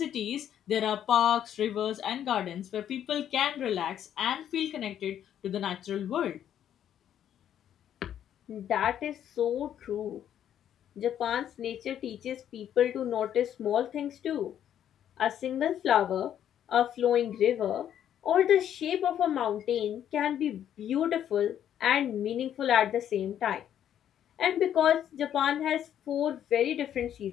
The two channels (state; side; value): quieter; right; 10.2 dB